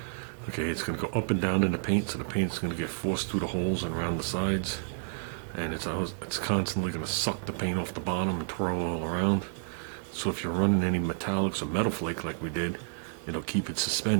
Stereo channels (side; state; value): left; silent; digital silence